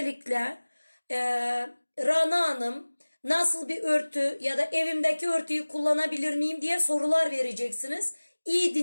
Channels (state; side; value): inverted; both; correlation -1.00